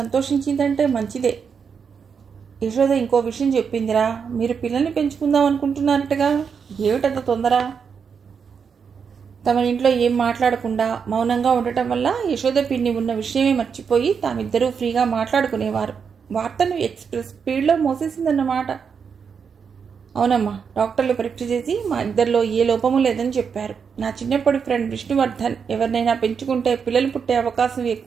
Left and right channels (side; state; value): left; quieter; 6.4 dB